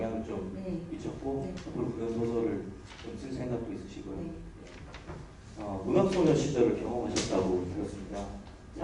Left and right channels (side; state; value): both; identical; correlation 1.00